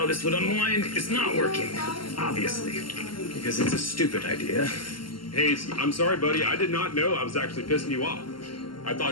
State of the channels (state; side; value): late; right; 0.72 ms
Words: this would unwind is not working, obviously, because it's a stupid idea. Hayes, I'm sorry, buddy. I did not know I was actually pissing you off. I